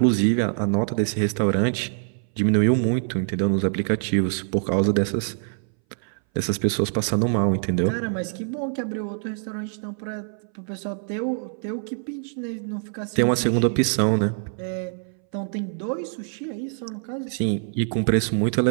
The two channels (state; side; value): silent; left; 60 dB below the other